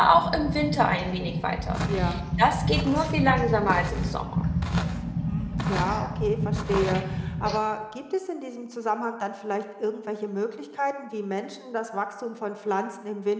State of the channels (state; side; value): identical; both; correlation 1.00